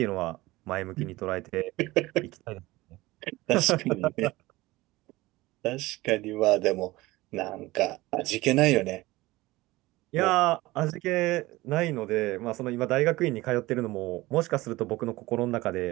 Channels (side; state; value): left; quieter; 19.5 dB